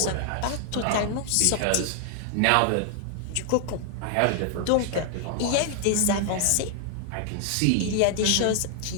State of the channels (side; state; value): both; different; correlation 0.00